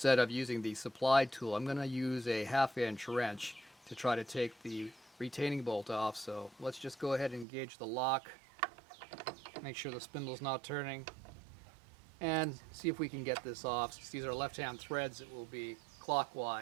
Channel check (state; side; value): drops out; left; at 7.5 s